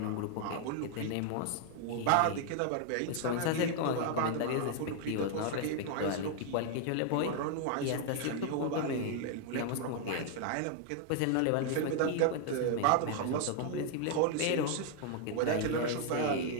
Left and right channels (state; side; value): different; both; correlation 0.00